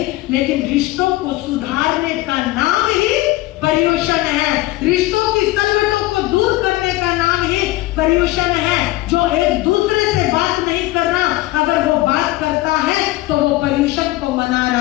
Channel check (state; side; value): quieter; right; 18.2 dB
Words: लेकिन रिश्तों को सुधारने का नाम ही पर्युषण है। रिश्तों की पर्यूषण है जो एक दूसरे से बात नहीं करना, अगर वो बात करता है तो वो पर्यूषण को मना